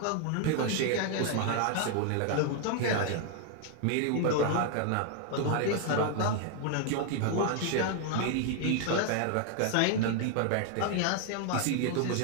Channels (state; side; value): different; both; correlation 0.00